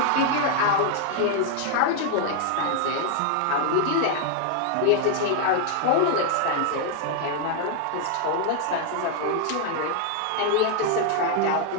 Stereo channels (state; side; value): different; both; correlation 0.00